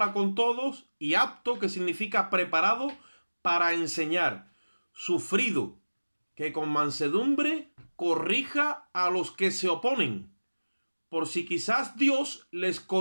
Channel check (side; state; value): both; inverted; correlation -1.00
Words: con todos y apto, que significa preparado para enseñar, sufrido, que con mansedumbre corrija a los que se oponen, por si quizás Dios les